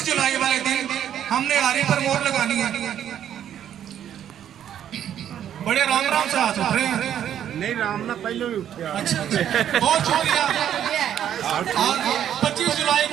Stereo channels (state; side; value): quieter; left; 10.1 dB